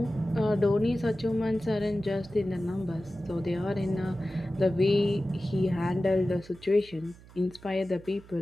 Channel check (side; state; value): right; noise; hum, 22 dB below the sound